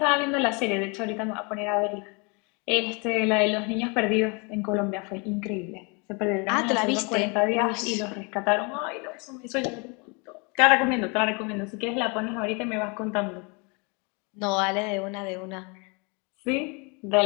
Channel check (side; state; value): right; quieter; 31.6 dB